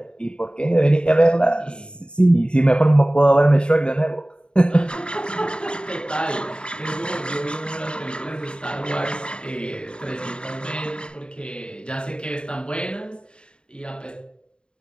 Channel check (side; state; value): right; late; 0.052 ms